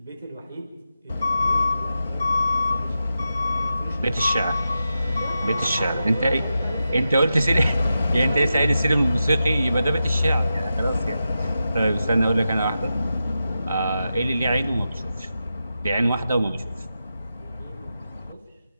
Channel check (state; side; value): inverted; both; correlation -0.90